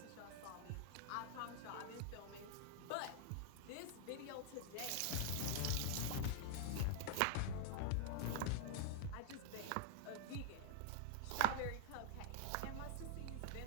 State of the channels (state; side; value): different; both; correlation 0.00